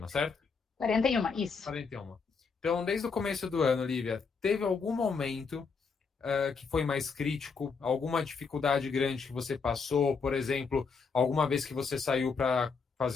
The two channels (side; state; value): right; quieter; 5.1 dB